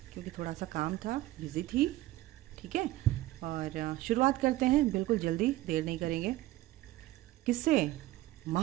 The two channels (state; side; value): quieter; left; 16.7 dB